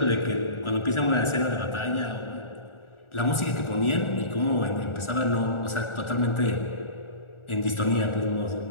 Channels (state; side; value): late; right; 1.4 ms